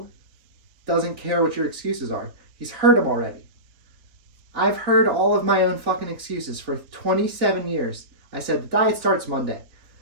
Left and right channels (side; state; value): left; late; 3.6 ms